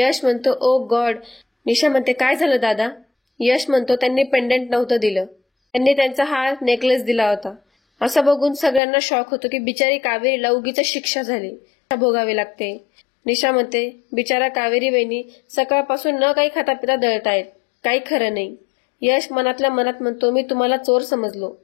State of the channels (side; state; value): right; drops out; at 8.8 s